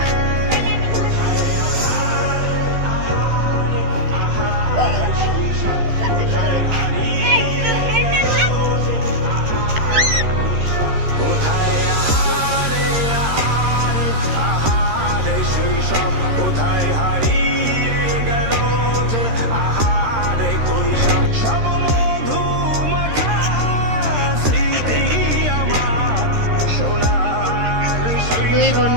শৈশব কোথায় হারিয়ে গেল যে আহারে কৈশব, সব মধু মাখা স্মৃতি আমার সোনার দুই বোন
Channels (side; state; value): left; late; 13 ms